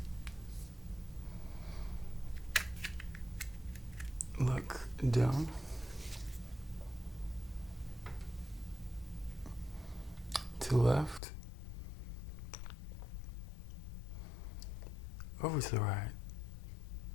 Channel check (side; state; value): right; drops out; at 11.2 s